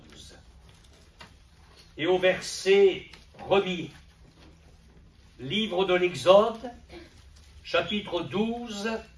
et au verset 1er. Livre de l'Exode, chapitre 12,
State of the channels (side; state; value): both; identical; correlation 1.00